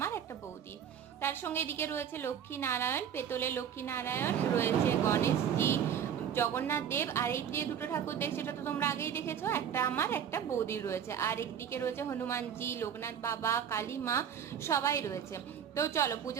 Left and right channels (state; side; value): quieter; left; 8.7 dB